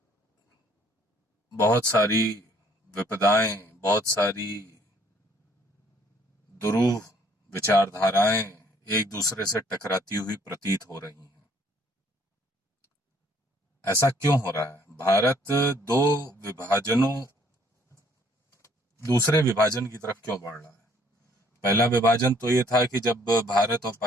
बहुत सारी विपदाएं, बहुत सारी दुरूह विचारधाराएं एक दूसरे से टकराती हुई प्रतीत हो रही हैं। ऐसा क्यों हो रहा है? भारत दो विभाजनों दूसरे विभाजन की तरफ क्यों बढ़ रहा है? पहला विभाजन तो ये था कि जब भारत और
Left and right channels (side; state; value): both; normal; correlation 0.62